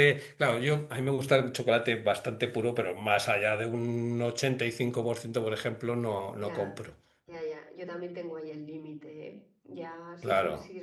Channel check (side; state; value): both; identical; correlation 1.00